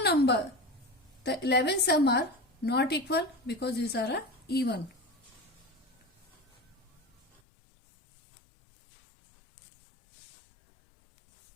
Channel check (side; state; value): right; drops out; at 7.4 s